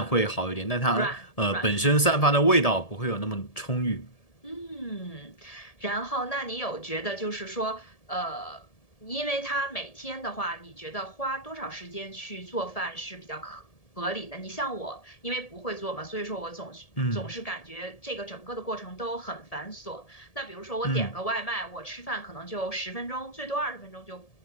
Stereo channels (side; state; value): right; late; 1.7 ms